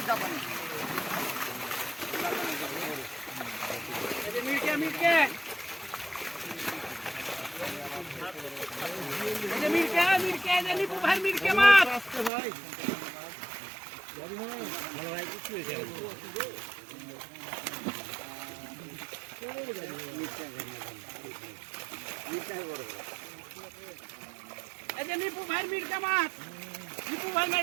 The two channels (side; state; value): left; drops out; at 12.3 s